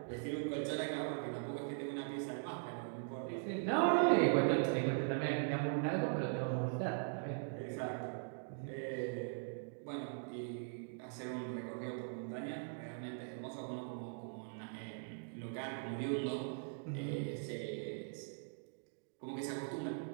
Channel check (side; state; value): left; silent; digital silence